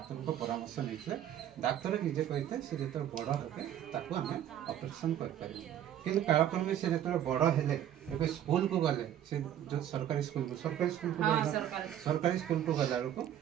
ପରାମର୍ଶ ନେଇଥିଲେ। ଡାକ୍ତର ନିଜେ କହିଥିଲେ ସେ ଯେତେବେଳେ ବଡ଼ ହେବେ ତାକୁ ଆମେ ଅପରେସନ୍ କରିପାରିବୁ। କିନ୍ତୁ କାଳକ୍ରମେ ସେ ଯେତେବେଳେ ବଡ଼ ହେଲେ ଏବେ ସ୍କୁଲକୁ ଗଲେ, ସେ ଯେଉଁ ସରକାରୀ ସ୍କୁଲକୁ ଗଲା ବେଳକୁ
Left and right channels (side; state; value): left; quieter; 10.8 dB